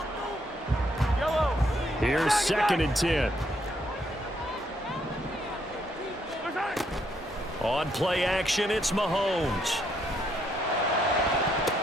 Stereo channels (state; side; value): normal; both; correlation 0.73